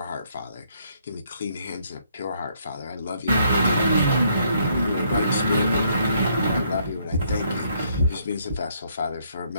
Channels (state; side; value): inverted; both; correlation -0.69